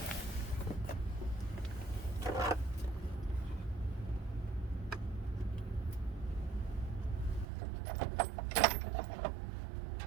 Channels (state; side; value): drops out; left; at 7.5 s